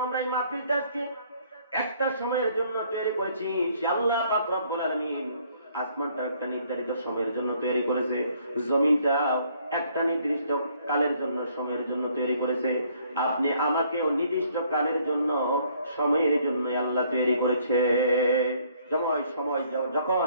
আমরা এই মাহফিলটা আজকে একটা সময়ের জন্য তৈরি করেছি, সে আল্লাহ পাক রব্বুল আলামিন আসমানটা একটা নির্ধারিত সময়ের জন্য তৈরি করেছে, জমিনটা একটা নির্দিষ্ট কালের জন্য, সময়ের জন্য তৈরি করেছে। আপনি আমাকেও নির্দিষ্ট কালের জন্য, সময়ের জন্য আল্লাহ তৈরি করেছে।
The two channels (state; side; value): inverted; both; correlation -0.64